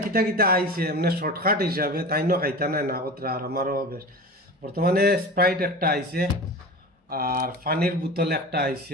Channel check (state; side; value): normal; both; correlation 0.33